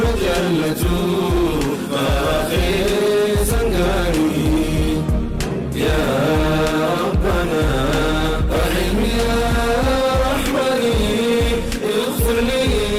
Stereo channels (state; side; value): identical; both; correlation 1.00